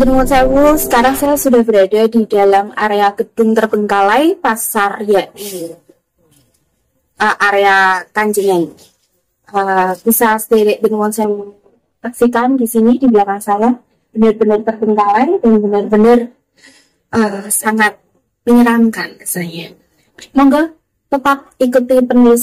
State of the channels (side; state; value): both; identical; correlation 1.00